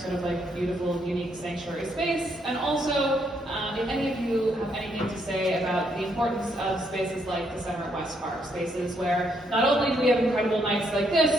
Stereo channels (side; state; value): both; normal; correlation 0.74